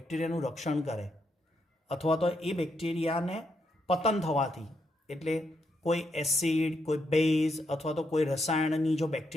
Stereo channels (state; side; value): normal; both; correlation 0.79